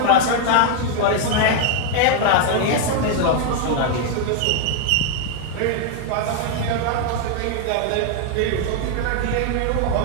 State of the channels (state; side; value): different; both; correlation 0.00